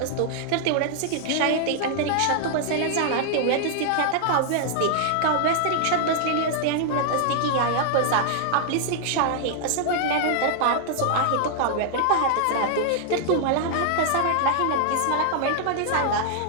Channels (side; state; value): both; different; correlation -0.01